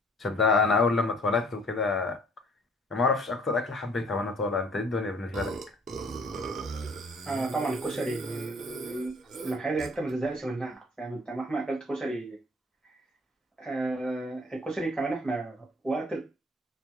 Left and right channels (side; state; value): both; normal; correlation 0.56